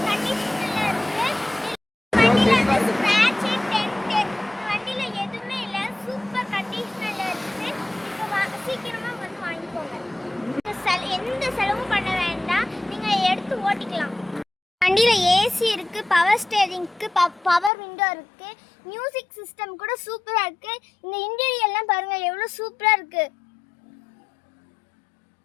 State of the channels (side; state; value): right; drops out; at 17.7 s